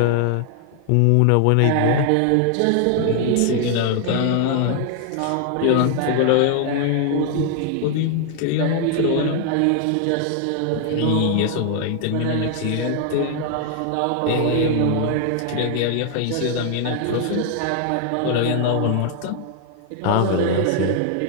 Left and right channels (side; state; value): both; different; correlation 0.00